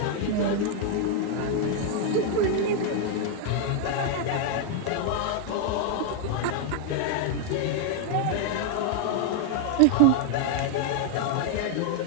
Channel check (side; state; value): both; different; correlation 0.00